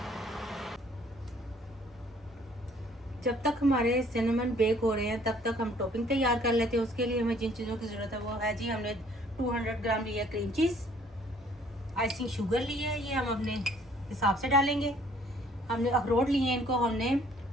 जब तक हमारे सिनेमन बेक हो रहे हैं तब तक हम टॉपिंग तैयार कर लेते हैं। उसके लिए हमें जिन चीज़ों की ज़रूरत है वो है जी, हमने 200 ग्राम लिया क्रीम चीज़, आइसिंग शुगर ली है, ये हम अपने हिसाब से डालेंगे। हमने अखरोट लिए हैं, इनको हमने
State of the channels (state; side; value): normal; both; correlation 0.59